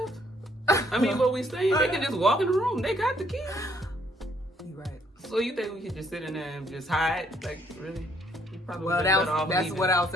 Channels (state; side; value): normal; both; correlation 0.67